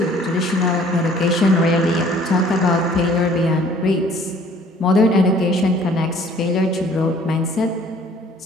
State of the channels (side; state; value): both; normal; correlation 0.55